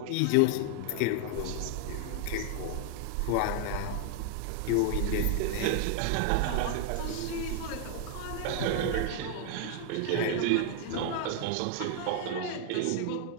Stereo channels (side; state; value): both; different; correlation 0.00